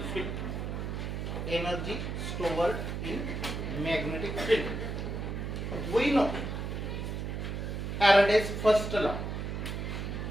field. Energy stored in magnetic field. We know Faraday's first law.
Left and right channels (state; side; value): noise; right; hum, 4 dB below the sound